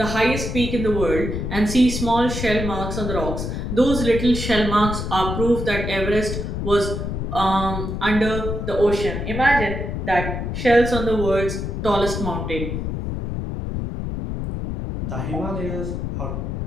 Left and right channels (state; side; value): noise; left; rumble, 4 dB below the sound